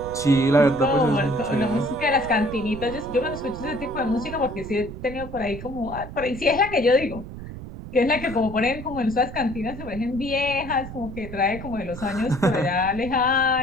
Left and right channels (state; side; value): noise; right; rumble, 11 dB below the sound